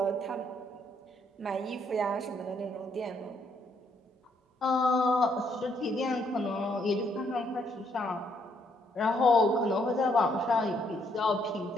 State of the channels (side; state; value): both; normal; correlation 0.71